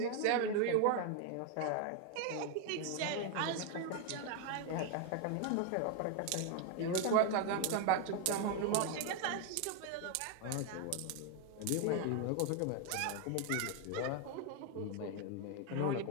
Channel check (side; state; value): both; different; correlation 0.01